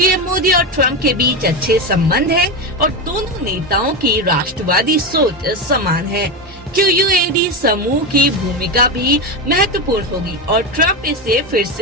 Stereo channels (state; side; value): normal; both; correlation 0.15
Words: मोदी और ट्रंप के बीच अच्छे संबंध है और दोनों नेताओं की राष्ट्रवादी सोच समान है। QUAD समूह की भूमिका भी महत्वपूर्ण होगी और ट्रंप इसे फिर